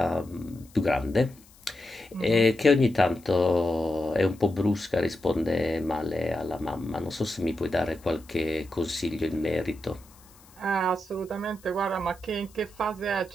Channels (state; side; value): noise; left; hiss, 26 dB below the sound